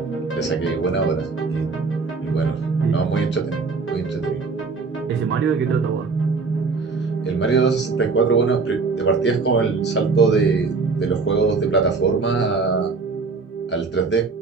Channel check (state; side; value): quieter; left; 4.4 dB